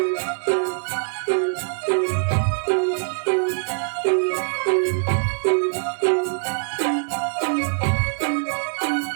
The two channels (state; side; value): silent; left; 63 dB below the other